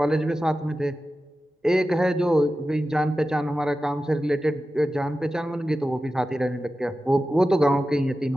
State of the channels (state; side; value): normal; both; correlation 0.93